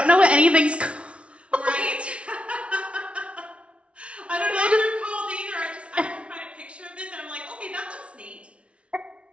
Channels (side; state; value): left; late; 0.061 ms